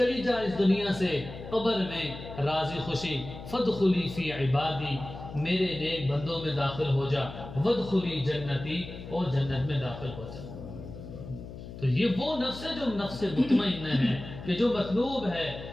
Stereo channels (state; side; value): noise; left; hum, 12 dB below the sound